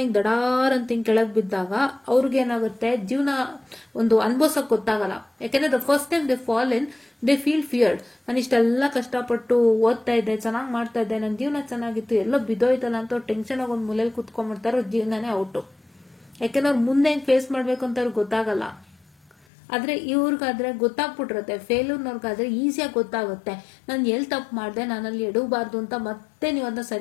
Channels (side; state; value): right; drops out; at 19.5 s